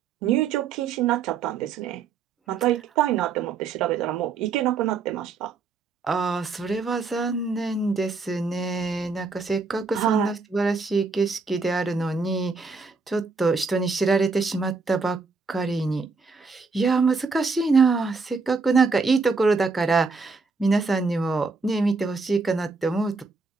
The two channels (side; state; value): left; quieter; 4.4 dB